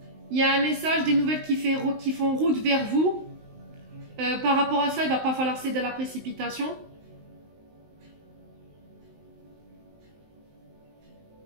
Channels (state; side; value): late; left; 19 ms